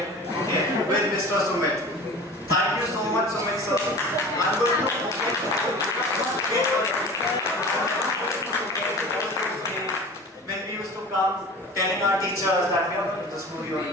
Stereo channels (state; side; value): normal; both; correlation 0.38